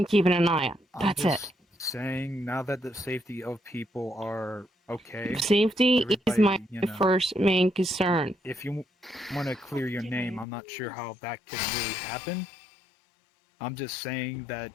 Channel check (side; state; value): right; drops out; at 10.5 s